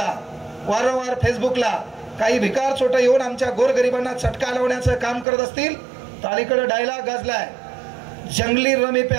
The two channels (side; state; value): left; drops out; at 5.2 s